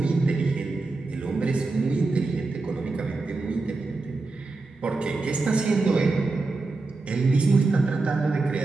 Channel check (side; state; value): left; quieter; 3.6 dB